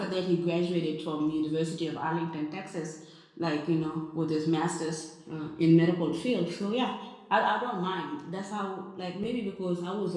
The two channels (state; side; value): identical; both; correlation 1.00